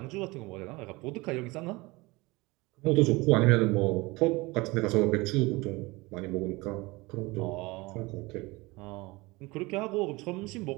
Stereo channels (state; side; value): quieter; left; 23.1 dB